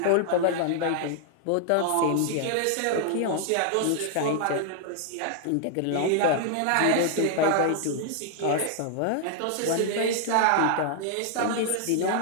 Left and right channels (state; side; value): different; both; correlation 0.00